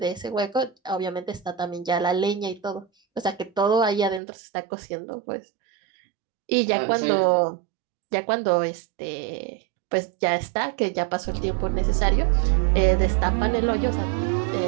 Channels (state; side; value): drops out; left; at 4.2 s